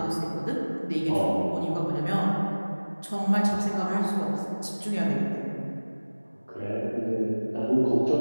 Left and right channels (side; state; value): both; inverted; correlation -1.00